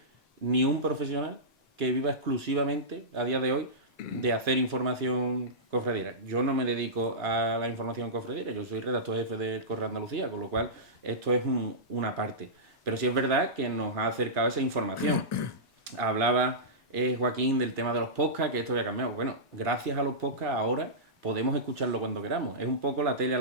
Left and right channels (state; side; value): normal; both; correlation -0.17